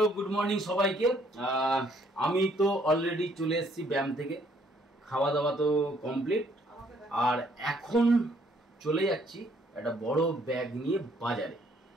গুড মর্নিং সবাইকে। আমি তো অলরেডি চলে এসেছি ব্যায়াম থেকে, খাওয়া দাওয়া তো কমপ্লিট, আর এখন চলে যাচ্ছি একটা বড় ব্যাগ নিয়ে বাজারে।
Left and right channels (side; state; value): both; normal; correlation 0.65